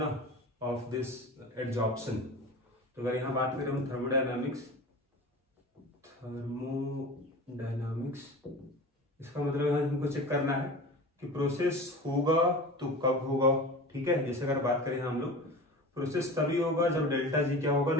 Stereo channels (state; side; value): normal; both; correlation 0.34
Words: ऑफ दिस एड्जॉर्प्शन। तो अगर यहाँ बात करें हम थर्मोडायनामिक्स, इसका मतलब हमको चेक करना है कि प्रोसेस होगा तो कब होगा। ठीक है, जैसे अगर बात करें हम लोग, प्रोसेस तभी होगा जब डेल्टा जी क्या होगा,